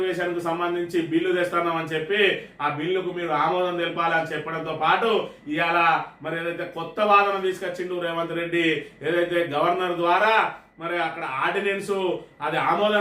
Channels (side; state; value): both; identical; correlation 1.00